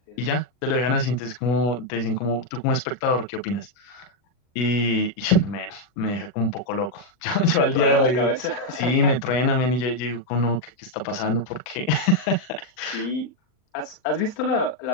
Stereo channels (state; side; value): late; right; 39 ms